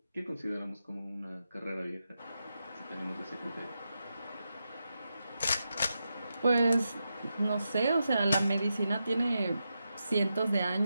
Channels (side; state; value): both; inverted; correlation -0.87